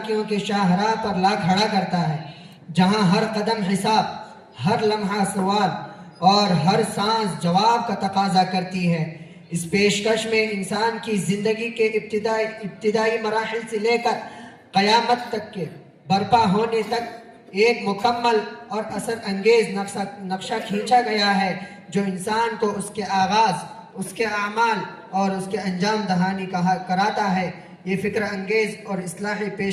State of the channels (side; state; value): both; identical; correlation 1.00